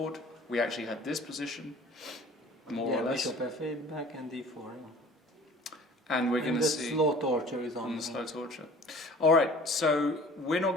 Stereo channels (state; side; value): normal; both; correlation 0.47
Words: We actually had this position. More or less. Bishop f8 back and d4. And we're going to see... the slow torture is on. The slow torture. Alright, so we're not